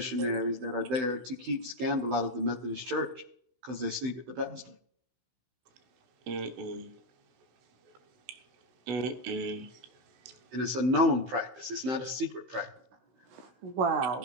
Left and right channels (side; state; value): left; late; 16 ms